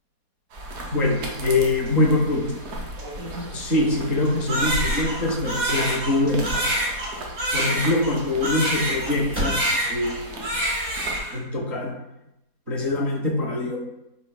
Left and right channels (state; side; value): late; left; 4.2 ms